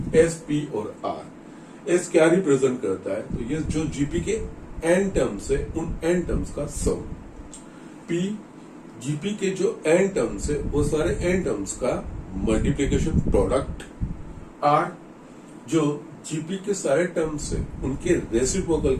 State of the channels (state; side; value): identical; both; correlation 1.00